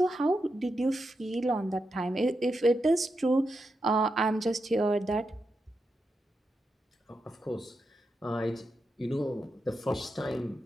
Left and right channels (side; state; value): both; normal; correlation 0.87